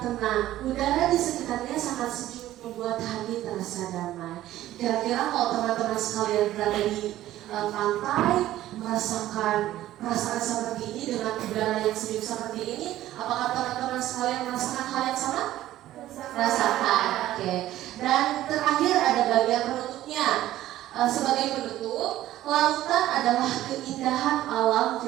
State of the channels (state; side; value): quieter; left; 14.2 dB